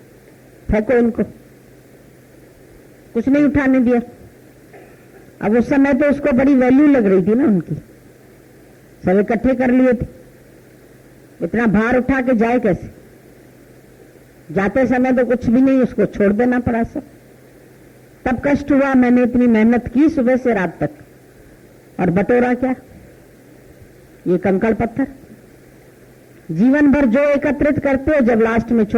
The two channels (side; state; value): both; identical; correlation 1.00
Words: फेंको इनको। कुछ नहीं उठाने दिया। अब उस समय तो उसको बड़ी वैल्यू लग रही थी ना उनकी, सब इकट्ठे कर लिए थे, इतना भार उठा के जाए कैसे? जाते समय तो कुछ भी नहीं, उसको छोड़ देना पड़ा सब। तब कष्ट हुआ, मैंने इतनी मेहनत की सुबह से रात तक, और बटोरा क्या? ये कंकड़ पत्थर। जीवन भर जो एकत्रित करते हो, जब लास्ट में